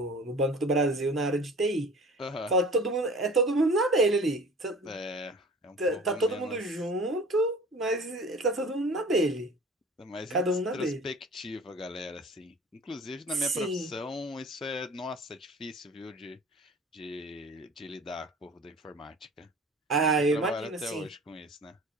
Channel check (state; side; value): normal; both; correlation 0.43